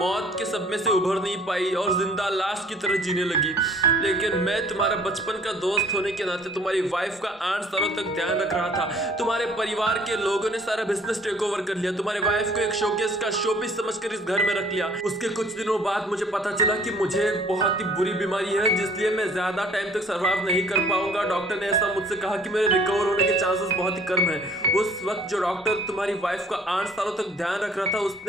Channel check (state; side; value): normal; both; correlation 0.56